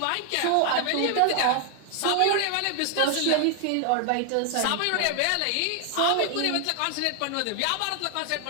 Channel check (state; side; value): different; both; correlation 0.00